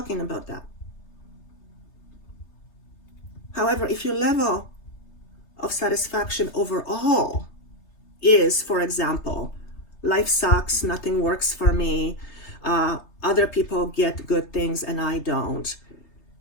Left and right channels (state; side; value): late; right; 3.3 ms